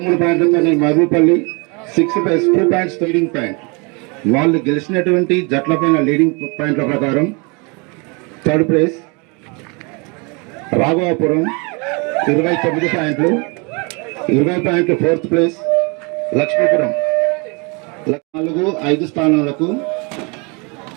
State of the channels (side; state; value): left; quieter; 30.9 dB